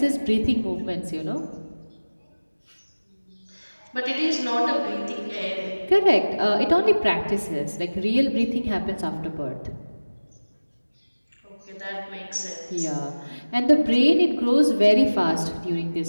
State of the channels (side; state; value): both; inverted; correlation -1.00